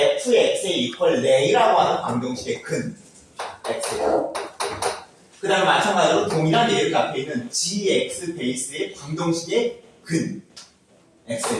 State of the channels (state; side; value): identical; both; correlation 1.00